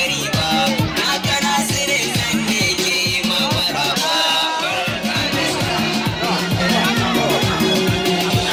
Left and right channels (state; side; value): identical; both; correlation 1.00